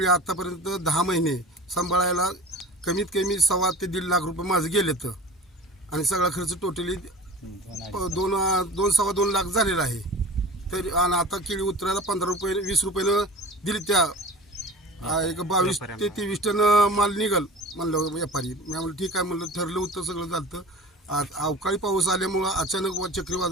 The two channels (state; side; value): normal; both; correlation 0.38